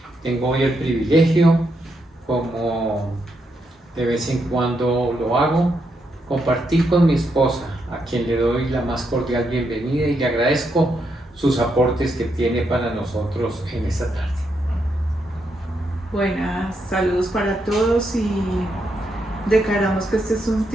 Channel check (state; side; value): normal; both; correlation 0.80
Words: Tengo hoy el privilegio, como de vez en cuando lo hago, compartir con mi esposa, a quien le doy la más cordial bienvenida y le agradezco sus aportes que tiene para nosotros en esta tarde. Buenas, saludos para todos y declaramos que este es un